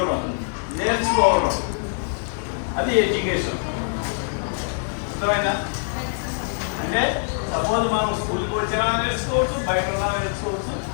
నేర్చుకోవడం, అది ఎడ్యుకేషన్. అర్థమైనా? అంటే సపోజ్ మనం స్కూల్కి వచ్చినా నేర్చుకోవచ్చు, బయట ఉన్నా నేర్చుకోవచ్చు,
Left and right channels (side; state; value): right; silent; digital silence